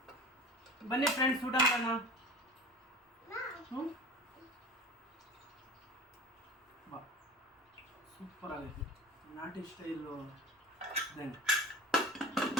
ಬನ್ನಿ ಫ್ರೆಂಡ್ಸ್ ಊಟ ಮಾಡೋಣ. ಬಾ, ಸೂಪರ್ ಆಗೈತೆ ನಾಟಿ ಸ್ಟೈಲು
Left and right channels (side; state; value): both; normal; correlation 0.35